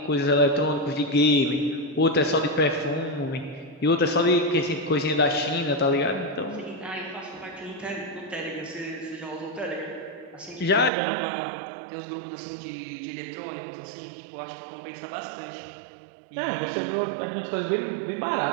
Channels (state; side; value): drops out; left; at 10.9 s